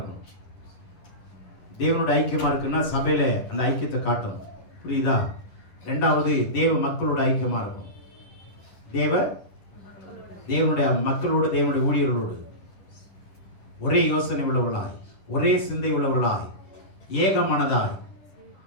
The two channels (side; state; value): right; late; 10 ms